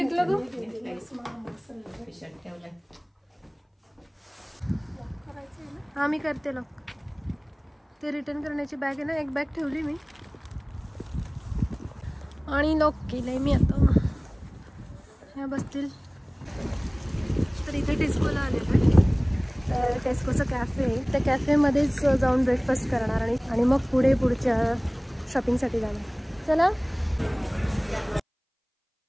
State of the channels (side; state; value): both; identical; correlation 1.00